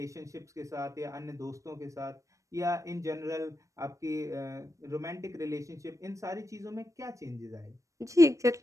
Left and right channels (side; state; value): left; late; 0.15 ms